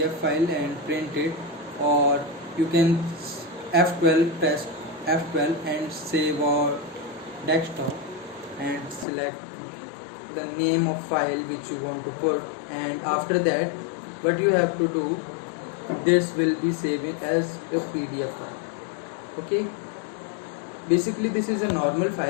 file and print it, or you can F12, press F12 and save or desktop, and select the name of file which you want to put, and after that what you have to do, this will be saved as a PDF file. Okay, basically this is a normal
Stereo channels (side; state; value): right; drops out; at 9.1 s